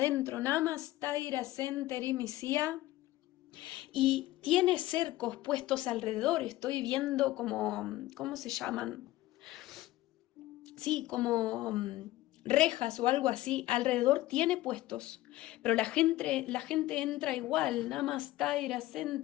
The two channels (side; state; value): right; quieter; 16.7 dB